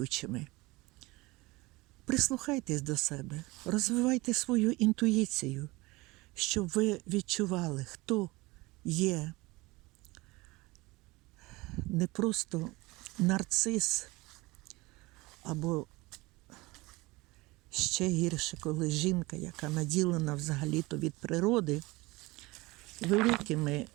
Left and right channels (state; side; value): quieter; left; 22.2 dB